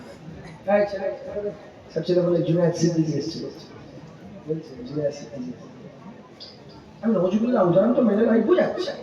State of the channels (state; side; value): identical; both; correlation 1.00